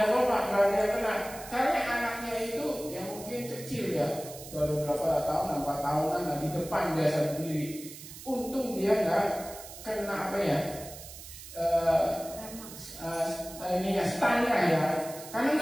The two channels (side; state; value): right; noise; hiss, 14 dB below the sound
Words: apa pak? Gak ada yang kena. Karena anaknya itu yang mungkin kecil ya, baru berapa tahun, 4 tahunan lah, di depan biasa berdiri. Untung dia nggak kena apa ya, ini ya stangnya ya. Karena